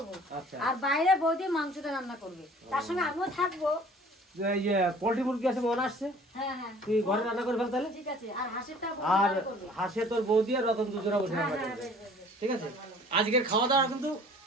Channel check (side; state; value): both; normal; correlation 0.50